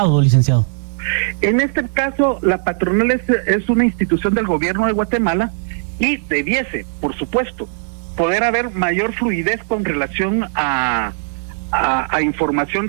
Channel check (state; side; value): silent; left; digital silence